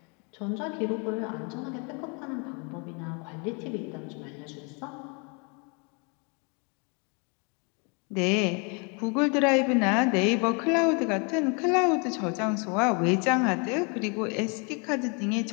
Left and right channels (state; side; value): quieter; right; 34.0 dB